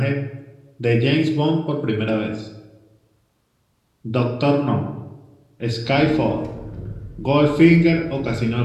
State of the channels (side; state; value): both; identical; correlation 1.00